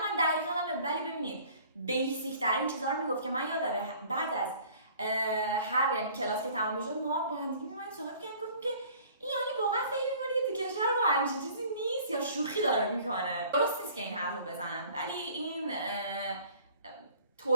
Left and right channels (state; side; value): inverted; both; correlation -0.52